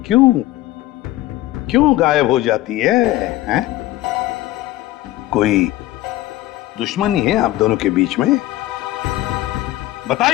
क्यों क्यों गायब हो जाती है, हैं? कोई दुश्मनी है आप दोनों के बीच में?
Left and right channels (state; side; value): quieter; right; 16.0 dB